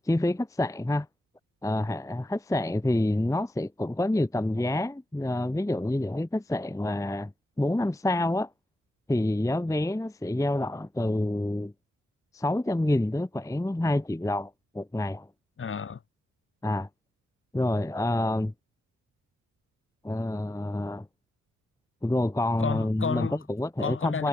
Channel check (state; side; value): normal; both; correlation 0.88